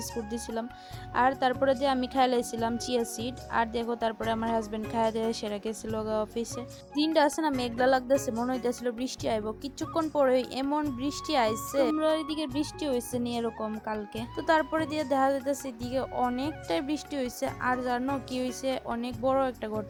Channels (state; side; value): identical; both; correlation 1.00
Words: দিয়েছিলাম। আর তারপরে দিয়ে আমি খাই লাইছিলাম চিয়া সিড। আর দেখো তারপরে আমার হাজবেন্ড খাইয়া দিয়ে সেরা গেছিল অফিসে। দিনটা আছে না মেঘলা লাগতেছে, মনে হইতেছিল বৃষ্টি আইব। কিছুক্ষণ পরে এমন বৃষ্টি আইছে, তোমরা ওইদিকে বৃষ্টি হয়েছে নি এরকম কালকে? তো তারপরে দিয়ে দেখা যাইতেছে এদিকে অনেকটাই বৃষ্টি হয়েছে। আর জানো কি হয়েছে? অনেক বড় একটা